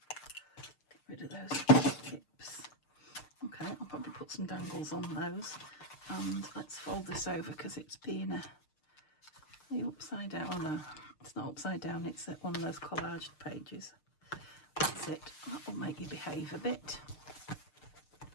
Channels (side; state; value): right; late; 6.6 ms